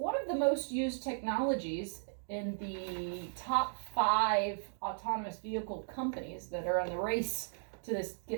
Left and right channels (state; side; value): silent; left; digital silence